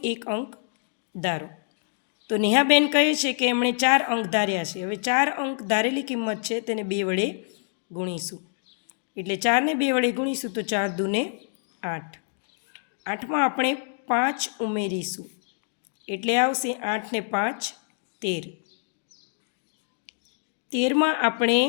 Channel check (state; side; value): silent; right; digital silence